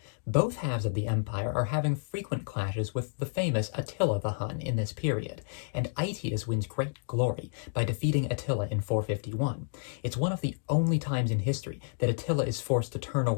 Both halves of the empire are having frequent clashes with the famous Attila the Hun in this period, and Aetius wins great glory by defeating Attila in 451. It's one of the only times in history that Attila is forced to turn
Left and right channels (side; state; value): right; silent; digital silence